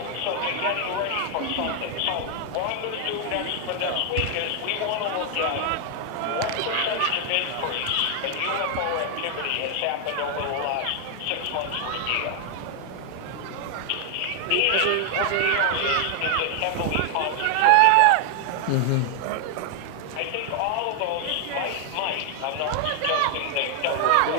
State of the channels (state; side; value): different; both; correlation 0.00